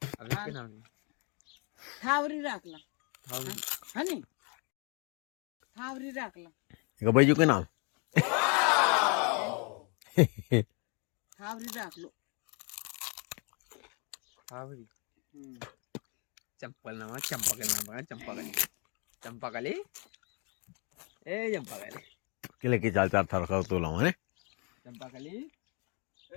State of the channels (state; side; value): quieter; right; 34.1 dB